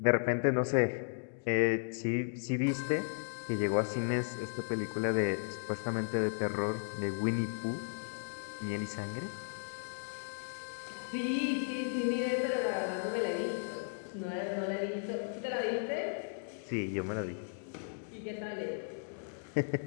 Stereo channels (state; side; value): silent; right; digital silence